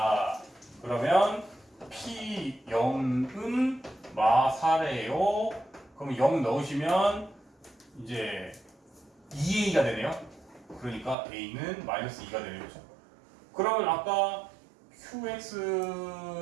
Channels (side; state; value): left; drops out; at 11.2 s